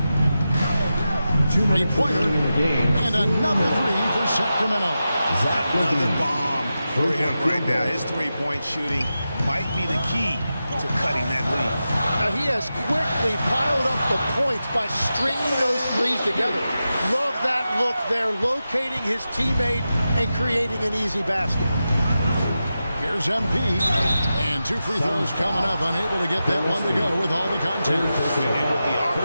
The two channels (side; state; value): both; inverted; correlation -0.91